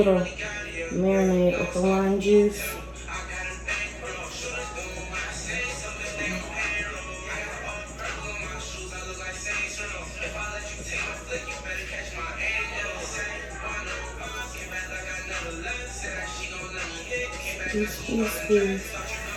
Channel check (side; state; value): both; identical; correlation 1.00